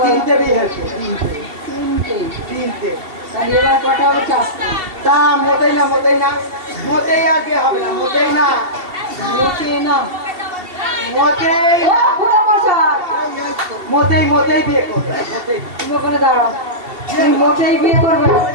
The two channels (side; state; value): left; late; 2.7 ms